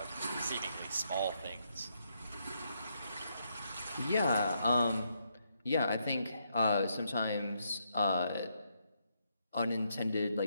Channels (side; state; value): both; inverted; correlation -0.77